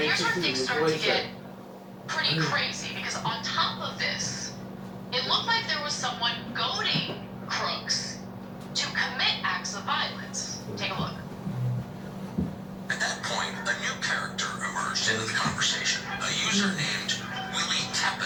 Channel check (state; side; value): identical; both; correlation 1.00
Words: where things start to get pretty crazy, because on top of this, it looked like there was someone goading Crooks to commit acts of violence. Take a look. At that point, a new character emerged into the conversation, a user named Willie